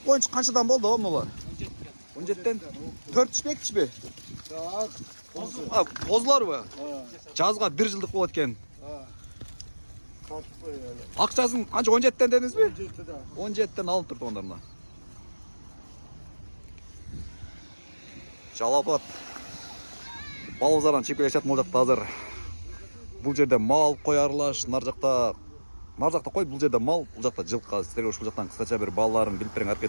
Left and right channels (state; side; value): inverted; both; correlation -1.00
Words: koyunчу kançadan boldu o mular? 17'den 4 işmek mi? Bozlar mı? Жазга 1 жылдык болот экен. Акчасын канча 17'den dediniz mi? 17'den alınıp turdu onlarına. Жалапат. Балбазардан чегип келишет могул жакта азыр. Бул жерде мал коярлаш, нар жакта кой, бул жерде мал, бул жакта жылкы. Силерге ушул жактан кыскача бир балдарын билип бериңер